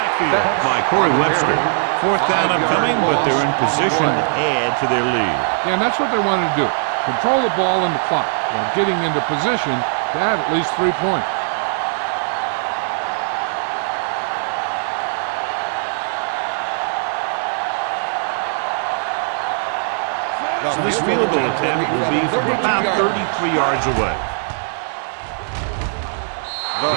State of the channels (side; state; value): left; silent; digital silence